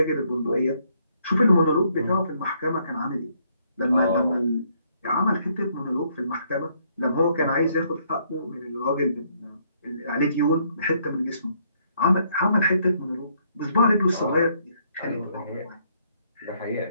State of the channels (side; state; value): both; inverted; correlation -0.70